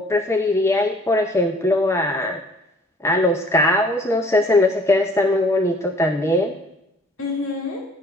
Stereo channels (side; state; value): both; normal; correlation 0.55